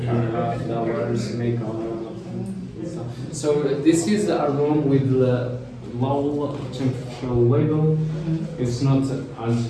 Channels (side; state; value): both; identical; correlation 1.00